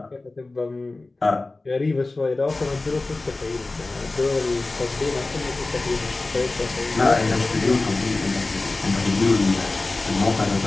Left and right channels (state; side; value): quieter; right; 3.2 dB